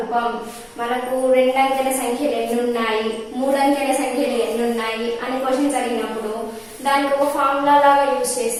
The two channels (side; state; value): both; identical; correlation 1.00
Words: మనకు 2 అంకెల సంఖ్యలు ఎన్ని ఉన్నాయి, 3 అంకెల సంఖ్యలు ఎన్ని ఉన్నాయి అని క్వశ్చన్స్ అడిగినప్పుడు దానికి ఒక ఫార్ములా లాగా యూజ్